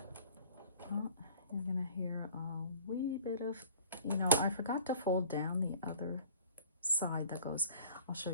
You're gonna hear a wee bit of, you know, I forgot to fold down the other side that goes, I'll show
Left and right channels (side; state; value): both; inverted; correlation -0.46